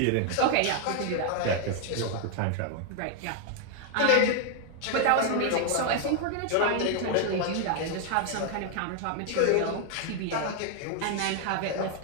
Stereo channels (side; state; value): both; different; correlation 0.00